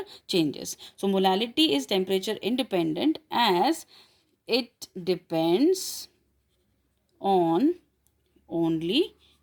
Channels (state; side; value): identical; both; correlation 1.00